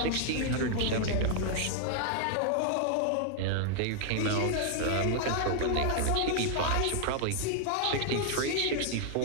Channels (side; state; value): both; different; correlation 0.00